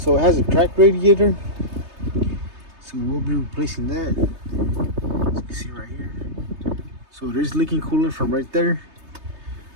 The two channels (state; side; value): late; left; 3.3 ms